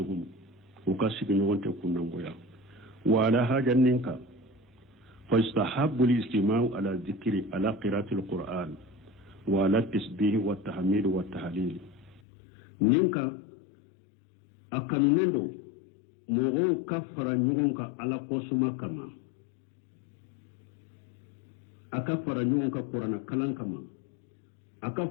وكاسك نغن تكون نغويا وعلى حاجة ننكا فاستحب الاستماع على الذكر على قراءة القرآن وعلى التسبيح والتحميد والتهليل ننكا أكنندو مغو كفر نغنك على قسمة كما أكفر نغنك قرآن كلام كما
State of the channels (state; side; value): drops out; right; at 12.2 s